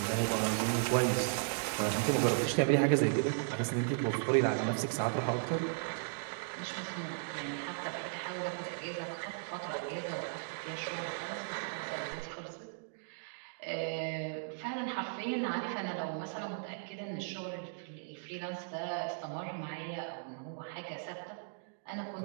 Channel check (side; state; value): left; silent; digital silence